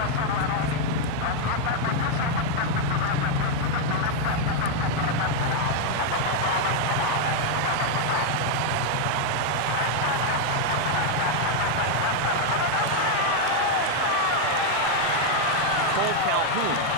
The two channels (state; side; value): different; both; correlation 0.00